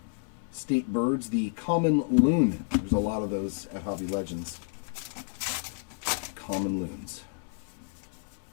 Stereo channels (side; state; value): right; silent; digital silence